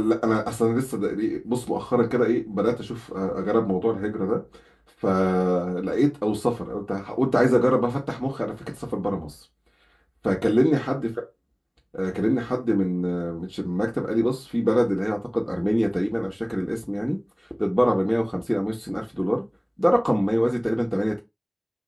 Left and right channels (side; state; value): both; identical; correlation 1.00